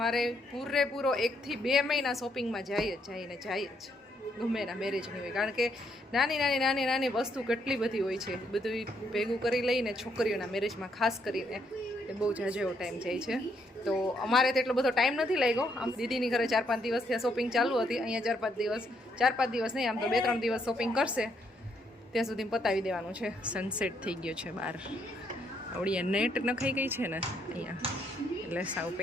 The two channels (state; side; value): normal; both; correlation 0.74